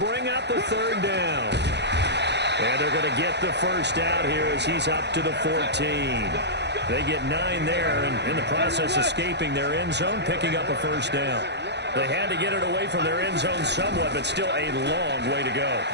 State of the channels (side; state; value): left; late; 0.50 ms